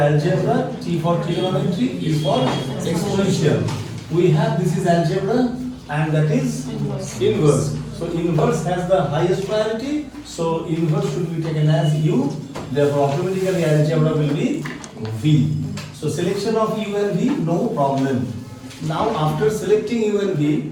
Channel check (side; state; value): both; identical; correlation 1.00